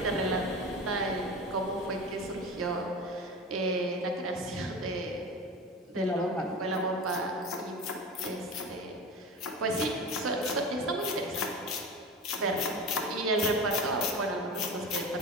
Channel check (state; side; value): normal; both; correlation 0.30